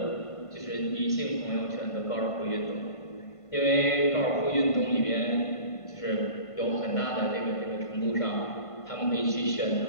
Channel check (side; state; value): right; late; 1.5 ms